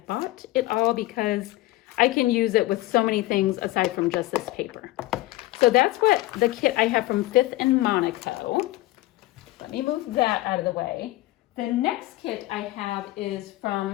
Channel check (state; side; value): quieter; right; 17.8 dB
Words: it all because I can use it with so many things aside from just this paper. So that's what the kit I have from Fifth and Monico. Let me move that out of the way. The next kit I have is